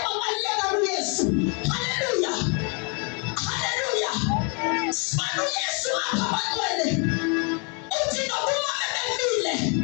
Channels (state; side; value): quieter; right; 36.0 dB